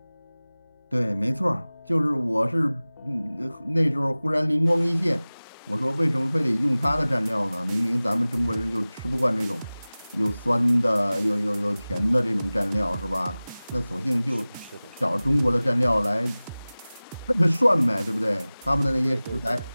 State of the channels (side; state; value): both; inverted; correlation -0.99